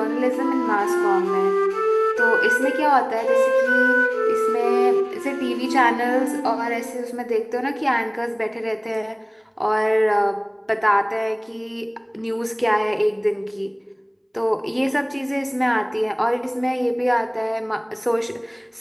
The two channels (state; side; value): identical; both; correlation 1.00